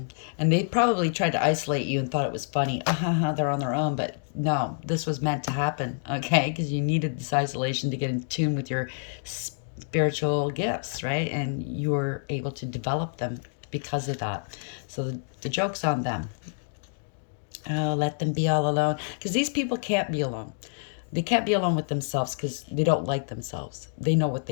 And they probably tried to isolate you and thought it was funny. They're on their own. But no, this was meant to happen, okay? Because you needed this isolation to get in tune with your spiritual gifts, right? And you were able to develop them because of that. So the joke's on them. Oh, let them be all alone. Because these people can't be alone. They can't be alone with themselves because they don't like themselves. They know what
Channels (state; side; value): silent; right; digital silence